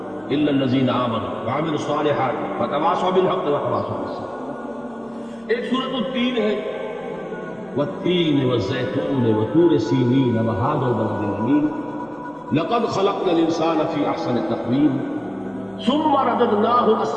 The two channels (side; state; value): left; noise; hum, 29 dB below the sound